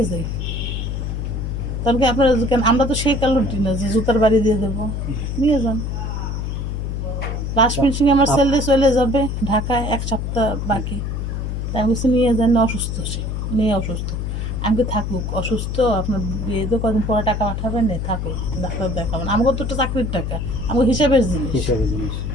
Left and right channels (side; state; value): left; noise; hum, 3 dB below the sound